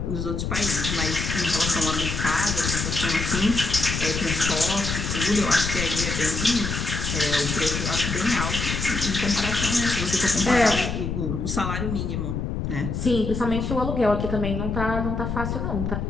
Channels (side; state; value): left; noise; rumble, 3 dB below the sound